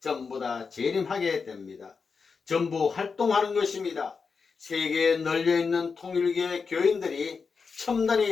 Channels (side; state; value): right; quieter; 5.2 dB